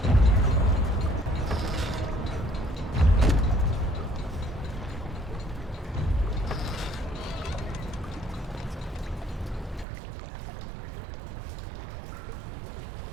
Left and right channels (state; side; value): drops out; left; at 9.9 s